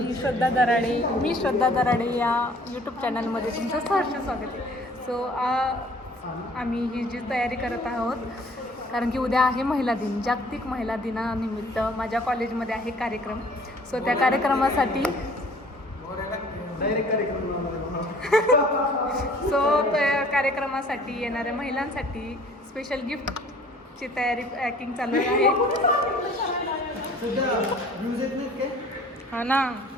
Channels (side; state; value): both; normal; correlation 0.53